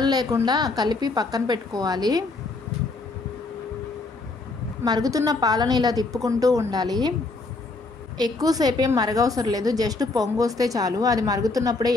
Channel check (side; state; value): right; quieter; 3.5 dB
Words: లేకుండా కలిపి పక్కన పెట్టుకోవాలి. మరుగుతున్న పాలను ఇలా తిప్పుకుంటూ ఉండాలి. ఎక్కువసేపు ఏం మరగవసరం లేదు, జస్ట్ పొంగు వస్తే చాలు. అది మరుగుతున్నప్పుడే